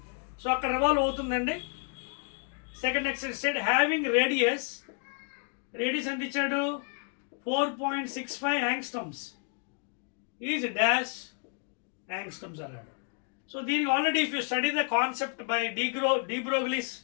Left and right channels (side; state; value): right; quieter; 38.3 dB